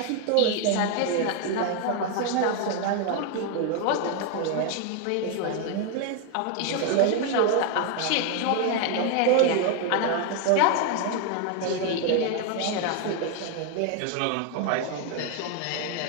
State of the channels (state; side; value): different; both; correlation 0.01